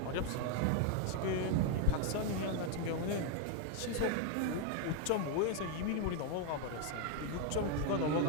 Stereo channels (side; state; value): both; different; correlation 0.00